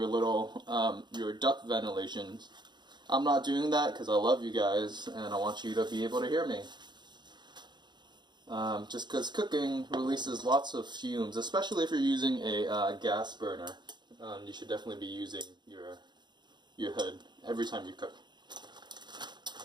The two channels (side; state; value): left; late; 0.21 ms